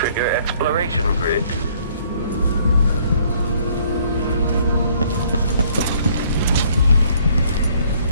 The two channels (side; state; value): both; inverted; correlation -0.62